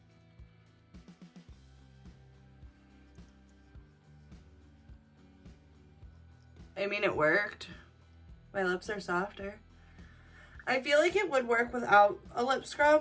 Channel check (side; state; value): both; identical; correlation 1.00